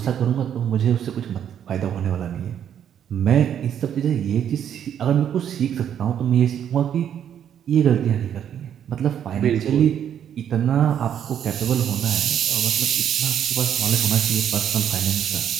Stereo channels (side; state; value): left; quieter; 9.3 dB